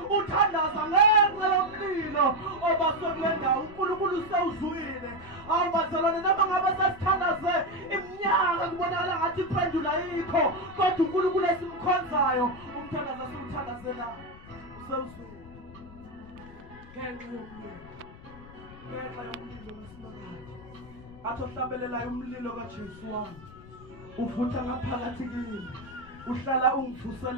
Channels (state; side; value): noise; left; rumble, 18 dB below the sound